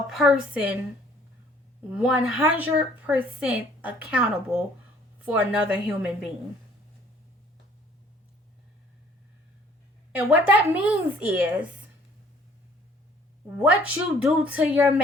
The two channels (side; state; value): both; normal; correlation 0.58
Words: person 100% accountable for another human being. And what that means is what you do to your